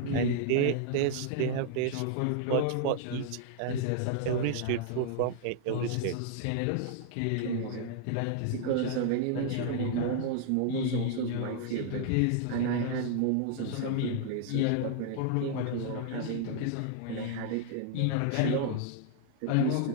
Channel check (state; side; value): different; both; correlation -0.01